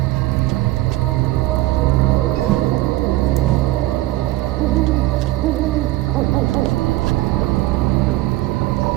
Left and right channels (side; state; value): left; quieter; 17.1 dB